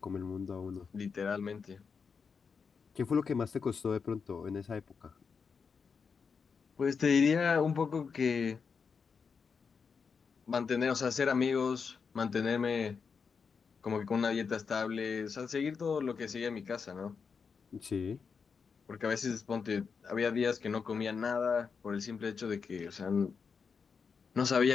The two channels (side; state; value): right; quieter; 5.7 dB